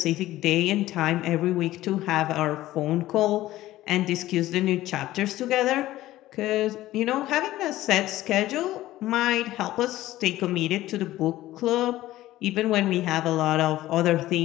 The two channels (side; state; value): right; quieter; 15.5 dB